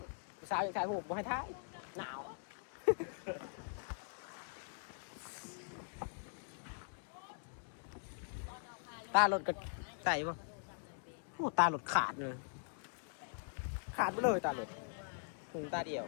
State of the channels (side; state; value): right; silent; digital silence